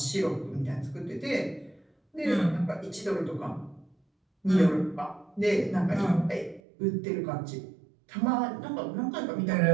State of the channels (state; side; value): drops out; left; at 6.6 s